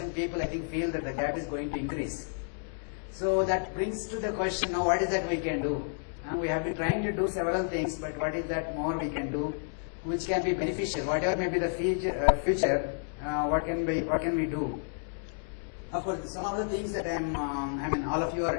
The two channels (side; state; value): right; silent; digital silence